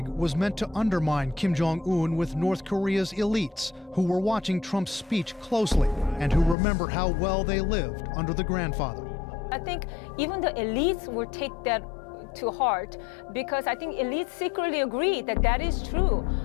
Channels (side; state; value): right; drops out; at 6.6 s